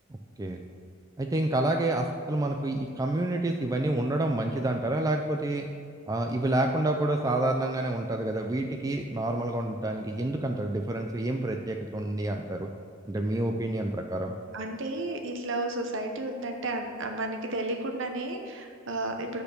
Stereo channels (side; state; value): both; normal; correlation 0.57